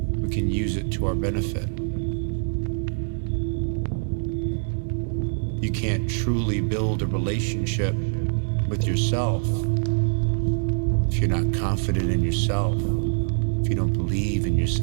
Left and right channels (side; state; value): left; silent; 62 dB below the other